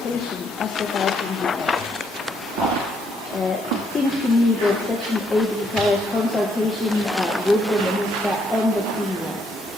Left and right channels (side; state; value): both; normal; correlation 0.72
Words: as set out in the Act? It seems to me that Section 8 requires consultation with the Minister and the Premier.